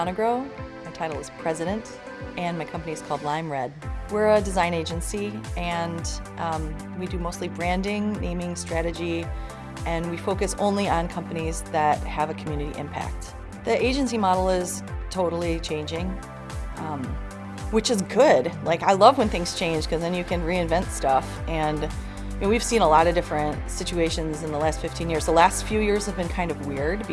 My title is President, and my company is called Lime Red. We're a design agency, and we do mostly branding, naming, strategy, and we focus only on companies that have a community impact. The agency model is totally changing, which is good. Like, I love when things change because then you can reinvent stuff. And we've seen a lot of different situations in the last 15 years. The last few years have been kind of weird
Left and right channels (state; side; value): identical; both; correlation 1.00